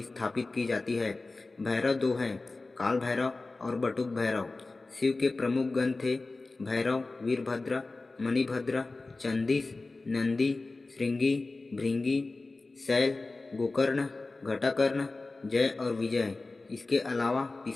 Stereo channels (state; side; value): quieter; right; 3.4 dB